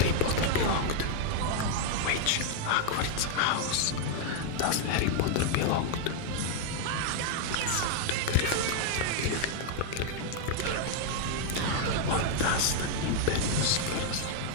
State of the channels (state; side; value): different; both; correlation 0.00